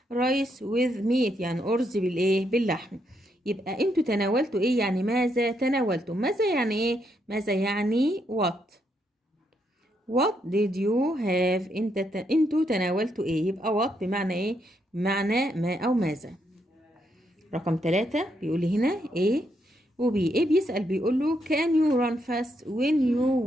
rice with meat، يعني أرز بالايه؟ باللحم. يبقى انتوا تناولتوا ايه؟ يعني ماذا تناولتم. ماذا يعني ايه؟ ماذا يعني what did you have؟ انتوا تناولتوا ايه؟ يبقى what بمعنى ايه؟ بمعنى ما او ماذا. رقم 3 بيقول لي هنا ايه وبي. ايه بيسأل بيقول له can you run fast when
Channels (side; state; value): both; normal; correlation 0.78